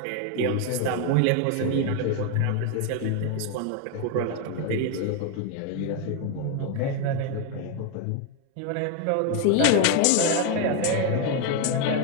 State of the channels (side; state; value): both; different; correlation 0.01